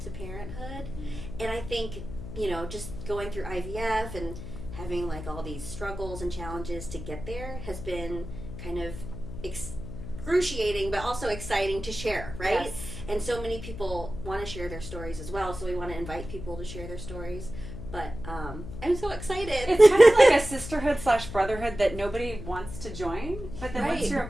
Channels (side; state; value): left; noise; hum, 10 dB below the sound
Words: to parenthood. And I think, you know, just going through IVF and having, like, all these struggles and challenges to get there has been kind of excruciating, but also exciting to share, right? Yes. And so many people want to share their stories as well, so we want to invite people to share their stories. But I'm so excited. It's kind of like a sisterhood / brotherhood that nobody wants to join, but then once Right. you're a